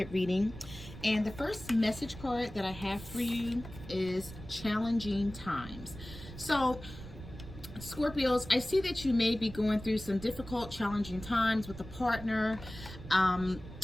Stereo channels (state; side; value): noise; right; rumble, 14 dB below the sound